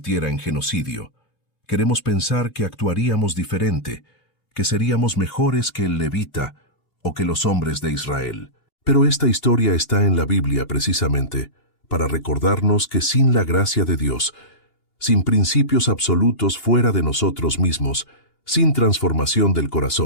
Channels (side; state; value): right; late; 2.8 ms